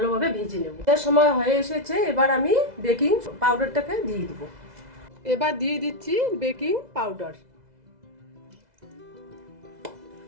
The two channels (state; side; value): late; left; 2.0 ms